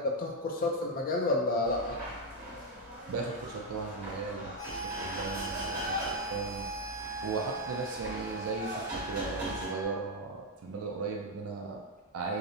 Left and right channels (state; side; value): normal; both; correlation 0.02